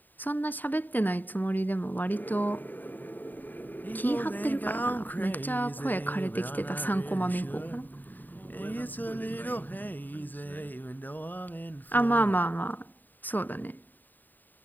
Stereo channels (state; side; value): late; right; 0.089 ms